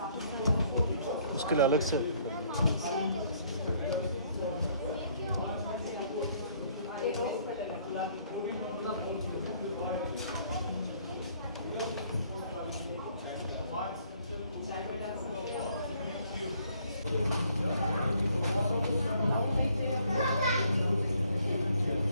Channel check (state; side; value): inverted; both; correlation -0.64